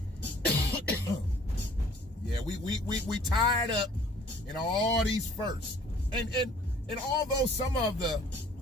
Yeah, we tied up in all these firsts. And although some of the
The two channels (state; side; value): normal; both; correlation 0.54